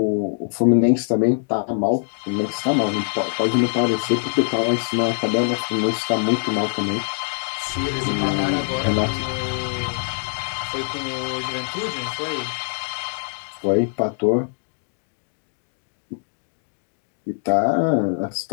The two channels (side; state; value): right; silent; digital silence